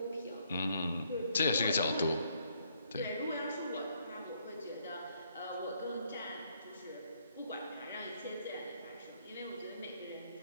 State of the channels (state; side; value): inverted; both; correlation -0.70